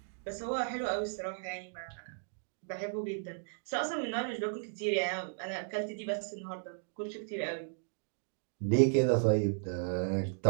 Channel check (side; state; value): left; silent; digital silence